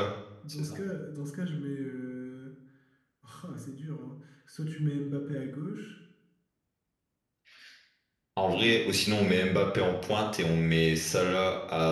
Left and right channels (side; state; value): both; identical; correlation 1.00